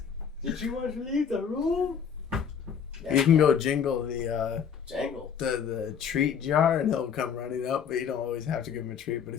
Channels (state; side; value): quieter; right; 7.4 dB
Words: did you want to leave the room? You can go jingle the Jangle. the treat jar and he'll come running up, but you don't always have to give him a treat. But